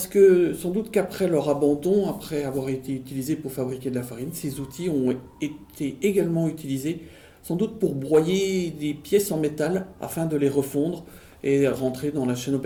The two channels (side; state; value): both; identical; correlation 1.00